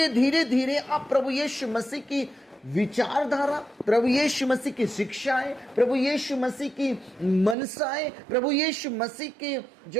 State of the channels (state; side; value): drops out; left; at 7.6 s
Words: धीरे धीरे आप प्रभु यीशु मसीह की विचारधारा, प्रभु यीशु मसीह की शिक्षाएं, प्रभु यीशु मसीह की मनसाएं, प्रभु यीशु मसीह के